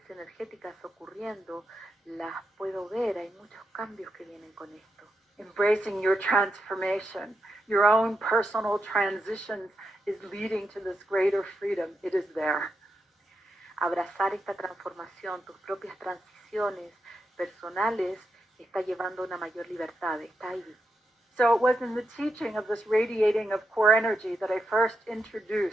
energéticas ocurriendo, las puedo ver, hay muchos cambios que vienen con esto. Embracing your transformation, your own personal transitions is leading to this greater freedom. It is there. Abrazar esta transformación, tus propias transiciones personales, está llevando a una mayor libertad, está ahí. So it was in the teaching of this radiating of core energy that I first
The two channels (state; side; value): normal; both; correlation 0.85